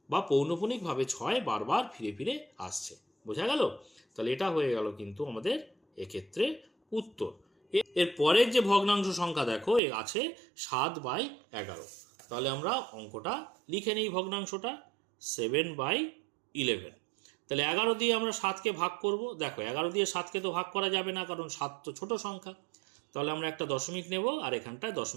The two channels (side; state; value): left; drops out; at 9.8 s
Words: বা পৌনঃপুনিকভাবে 6 বারবার ফিরে ফিরে আসছে, বোঝা গেল। তাহলে এটা হয়ে গেল কিন্তু আমাদের এক্ষেত্রে উত্তর। এর পরের যে ভগ্নাংশ সংখ্যা দেখো এ আছে 7/11, তাহলে আমরা অঙ্কটা লিখে নিই, ভগ্নাংশটা 7/11। তাহলে 11 দিয়ে আমরা 7কে ভাগ করব, দেখো 11 দিয়ে 7কে তো ভাগ করা যাবে না, কারণ 7 তো ছোট সংখ্যা, তাহলে আমরা একটা দশমিক নেব, আর এখানটায়